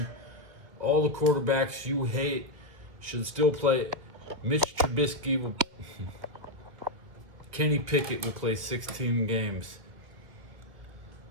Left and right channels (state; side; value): late; left; 1.9 ms